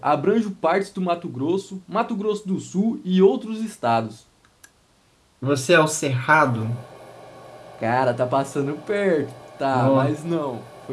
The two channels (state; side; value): identical; both; correlation 1.00